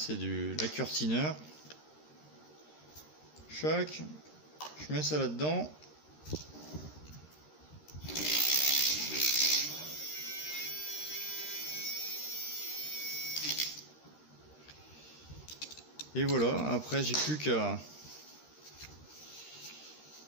du liqueur thinner. Chac, je mets ça là-dedans. Et voilà, après j'ai plus qu'à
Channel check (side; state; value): right; late; 13 ms